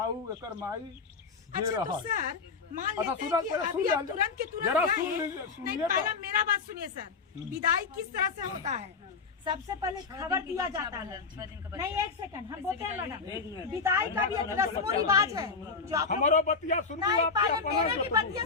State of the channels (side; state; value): right; quieter; 4.9 dB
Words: एकर माई। अच्छा तो सर मान लेते हैं कि अभी आप तुरंत के तुरंत नहीं, पहला मेरा बात सुनिए सर, विदाई किस तरह से होता है? सबसे पहले खबर दिया जाता है, नहीं 1 सेकंड हम बोलते हैं मैडम, विदाई का भी एक रस्म रिवाज है जो आप हमारो बतिया सुन नहीं, पहले मेरे भी बतिया